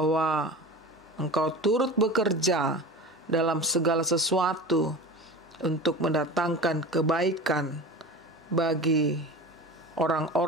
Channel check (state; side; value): normal; both; correlation 0.33